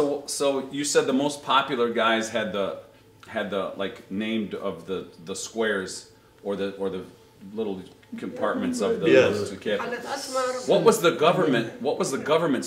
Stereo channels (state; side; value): identical; both; correlation 1.00